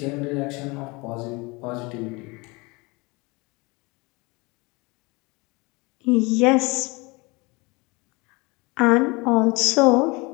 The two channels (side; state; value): right; quieter; 26.1 dB